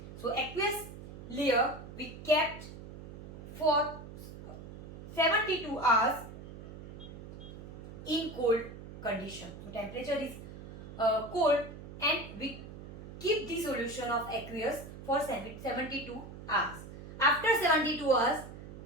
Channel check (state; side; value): noise; right; hum, 13 dB below the sound